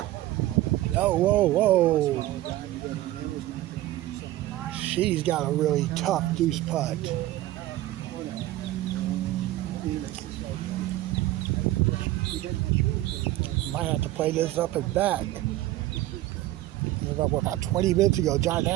Oh, whoa, whoa. She's got a really tough deuce putt. Might have to play this up and back. About 20 minutes ago, John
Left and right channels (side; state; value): left; quieter; 15.8 dB